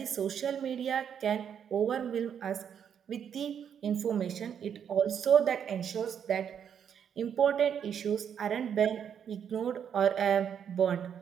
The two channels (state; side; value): quieter; left; 8.2 dB